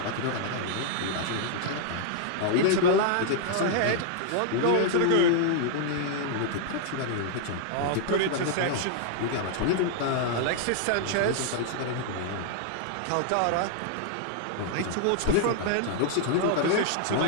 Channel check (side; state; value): both; different; correlation -0.01